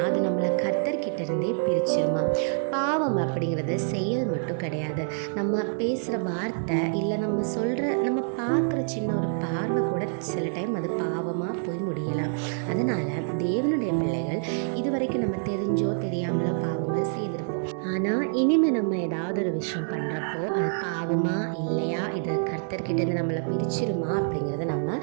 அது நம்மளை கர்த்தர்கிட்ட இருந்தே பிரிச்சிருமா. பாவம் அப்படிங்கிறது செயல் மட்டும் கிடையாது. நம்ம பேசுகிற வார்த்தை இல்லை நம்ம பார்க்குற சின்ன ஒரு பார்வை கூட சில டைம் அது பாவமாக போய் முடியலாம். அதனால் தேவனுடைய பிள்ளைகள் இதுவரைக்கும் நம்ம தெரிஞ்சோ தெரியாமலோ பாவங்கள் செய்திருப்போம். ஆனால் இனிமேல் நம்ம ஏதாவது ஒரு விஷயம் பண்ணுறப்போ அது பாவமா இல்லையா, இது கர்த்தர்கிட்டேருந்து நம்மளை பிரிச்சிருமா அப்படிங்கிறத நம்ம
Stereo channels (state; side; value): silent; left; 60 dB below the other